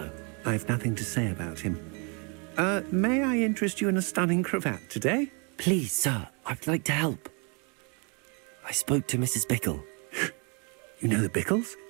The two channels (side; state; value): left; quieter; 33.9 dB